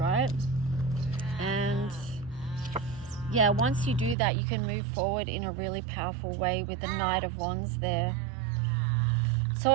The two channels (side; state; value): left; drops out; at 4.2 s